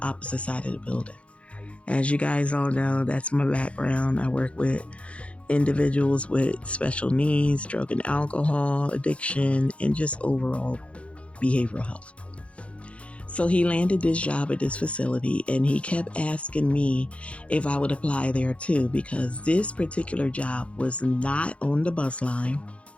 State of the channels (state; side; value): late; right; 0.062 ms